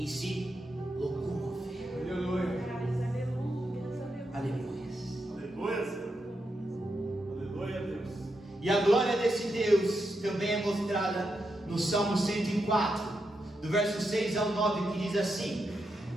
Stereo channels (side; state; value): both; normal; correlation 0.84